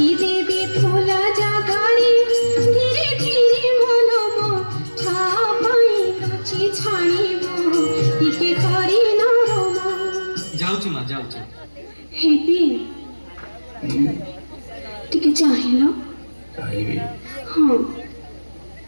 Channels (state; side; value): inverted; both; correlation -1.00